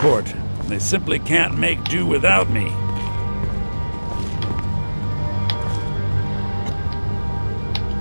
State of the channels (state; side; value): inverted; both; correlation -1.00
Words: They simply can't make do without me.